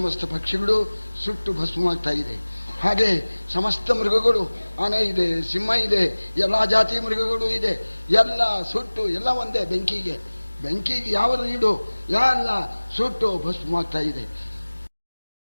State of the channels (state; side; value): inverted; both; correlation -1.00